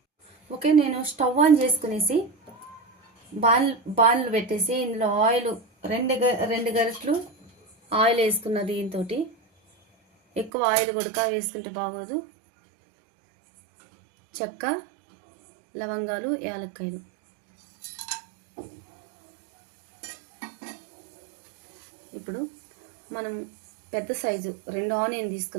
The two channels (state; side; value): drops out; left; at 10.5 s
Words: ఓకే, నేను స్టవ్ ఆన్ చేసుకునేసి బాణలు పెట్టేసి ఇందులో ఆయిల్ రెండు గరిటెలు ఆయిల్ వేసుకున్న. దీంతో ఎక్కువ ఆయిల్ కూడా వేసుకుంటే బాగోదు. చెక్క, లవంగాలు, యాలక్కాయలు. ఇప్పుడు మనం పెద్ద సైజు 2 ఆనియన్